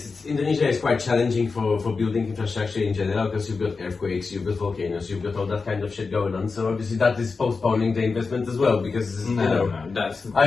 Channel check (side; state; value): right; quieter; 4.5 dB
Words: Indonesia is quite challenging for building infrastructure in general because you've got earthquakes, you've got volcanoes, you've got all that kind of shit going on. So obviously that is postponing the investment as well because No, that's